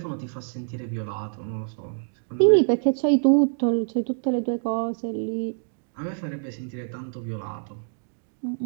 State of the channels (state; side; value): silent; left; digital silence